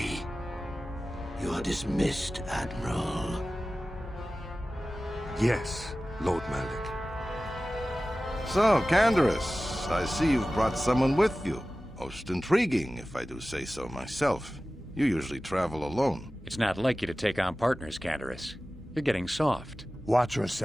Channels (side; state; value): both; normal; correlation 0.96